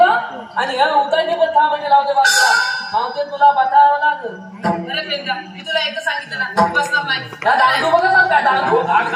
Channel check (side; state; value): both; identical; correlation 1.00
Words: आणि ह्या उतारने पण 6 महिने लावू दे बा तुला मावते तुला बतावं लागल अरे पेंद्या, मी तुला एकदा सांगितलं ना बसणार नाही. या दांडू बघा ना काय दांडू